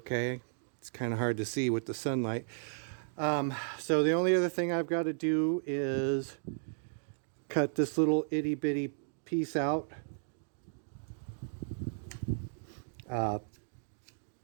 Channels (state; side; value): silent; left; digital silence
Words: It's kind of hard to see with the sunlight. So the only other thing I've got to do is cut this little itty bitty piece out.